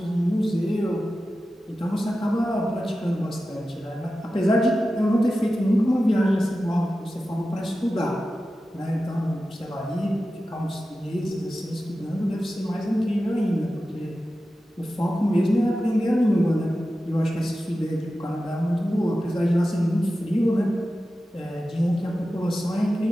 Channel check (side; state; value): both; normal; correlation 0.93